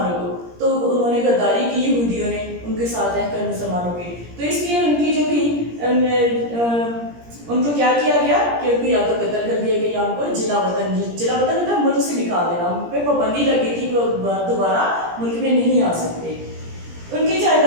को, तो उन्होंने गद्दारी की यहूदियों ने उनके साथ रहकर मुसलमानों के। तो इसलिए उनकी जो थी उनको क्या किया गया कि उनको या तो कत्ल कर दिया गया या उनको जिला वतन मतलब मुल्क से निकाल देना, उन पर पाबंदी लगी थी कि वो दोबारा मुल्क में नहीं आ सकते। उनकी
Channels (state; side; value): late; left; 17 ms